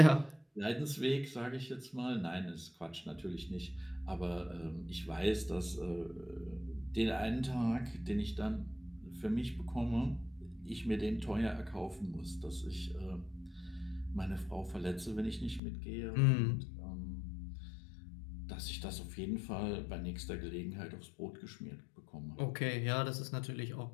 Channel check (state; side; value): drops out; right; at 15.6 s